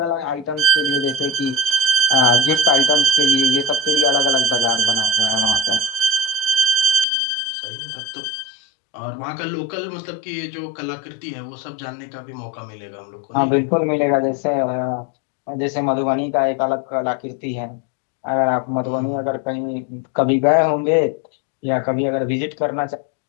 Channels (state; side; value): drops out; right; at 7.1 s